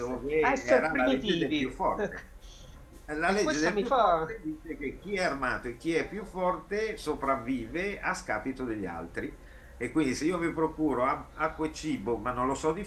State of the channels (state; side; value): identical; both; correlation 1.00